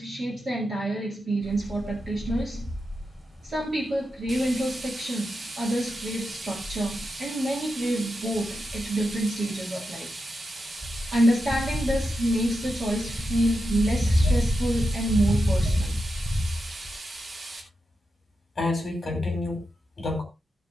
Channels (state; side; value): normal; both; correlation 0.88